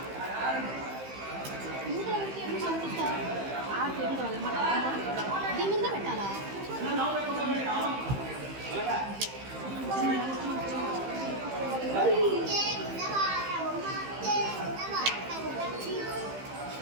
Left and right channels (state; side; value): late; left; 15 ms